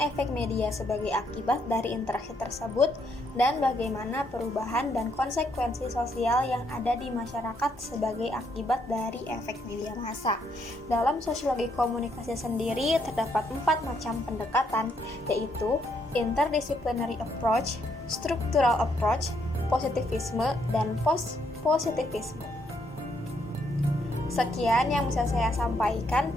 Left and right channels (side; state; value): both; normal; correlation 0.74